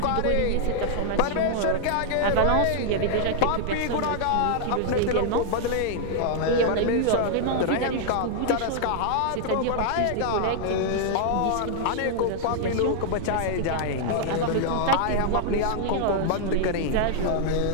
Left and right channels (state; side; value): different; both; correlation -0.01